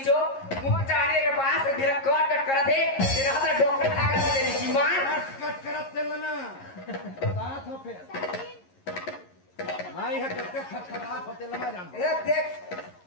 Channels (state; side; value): late; right; 11 ms